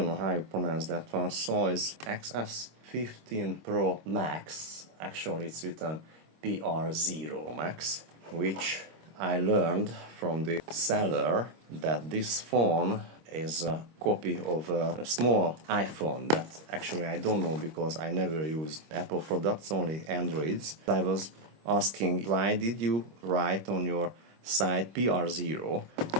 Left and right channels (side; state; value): left; late; 25 ms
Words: know how you pronounce that one, Soyes XS15 Pro Max. Actually it's written PR0 Max, which I learned from the seller that this phone is a copy of a small iPhone that actually I don't know because I never used Apple products, only Androids. I was asking why did you write on your site PR0,